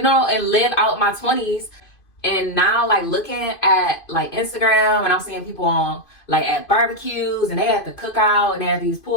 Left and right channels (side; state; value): right; late; 2.5 ms